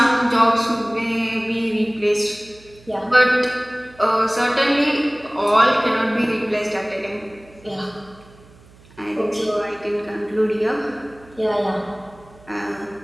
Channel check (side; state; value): right; noise; hum, 25 dB below the sound